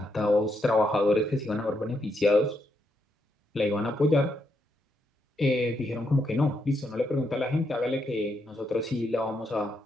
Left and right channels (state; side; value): normal; both; correlation 0.79